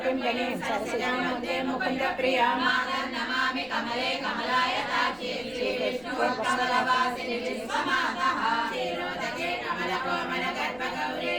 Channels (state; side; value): noise; left; rumble, 25 dB below the sound